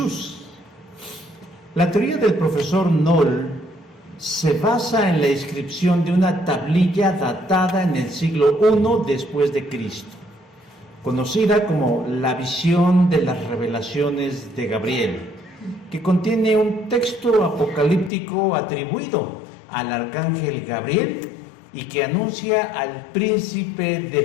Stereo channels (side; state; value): right; drops out; at 18.1 s